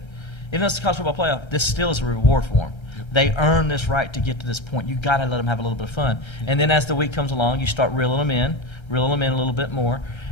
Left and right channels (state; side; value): late; right; 1.3 ms